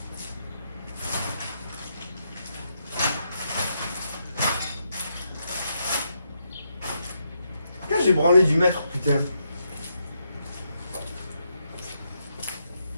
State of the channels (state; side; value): inverted; both; correlation -0.80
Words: Pourquoi j'ai branlé du mètre, putain?